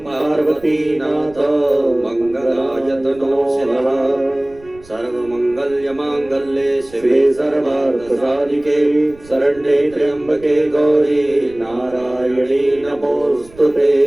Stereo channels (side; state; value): right; noise; rumble, 23 dB below the sound